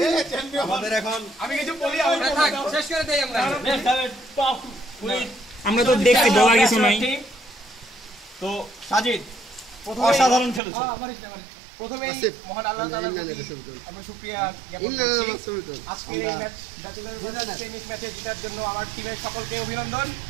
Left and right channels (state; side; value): drops out; left; at 10.6 s